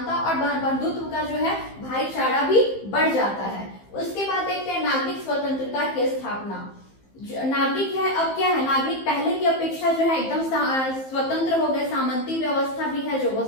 और बंधुत्व का जो है भाईचारा भी बढ़ जाता है। उसके बाद देखते हैं नागरिक स्वतंत्रता की स्थापना। नागरिक है, अब क्या है, नागरिक पहले की अपेक्षा जो है एकदम स्वतंत्र हो गए, सामंती व्यवस्था भी है जो वो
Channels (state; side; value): late; right; 15 ms